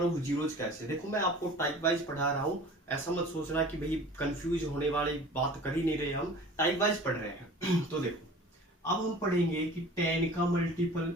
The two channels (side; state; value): both; normal; correlation 0.43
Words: ऑफ जीरोज कैसे। देखो मैं आपको टाइप वाइज पढ़ा रहा हूं, ऐसा मत सोचना कि भाई कंफ्यूज होने वाली बात कर ही नहीं रहे, हम टाइप वाइज पढ़ रहे हैं। तो देखो अब हम पढ़ेंगे कि 10 का मल्टीपल,